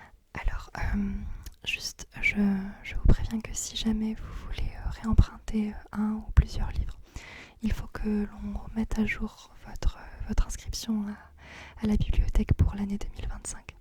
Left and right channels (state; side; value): identical; both; correlation 1.00